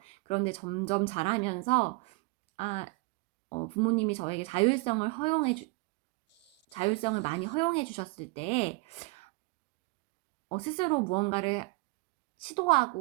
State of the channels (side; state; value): left; quieter; 27.1 dB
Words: 그런데 점점 자라면서, 부모님이 저에게 자율성을 많이 허용해 주셨을 때, 스스로 무언가를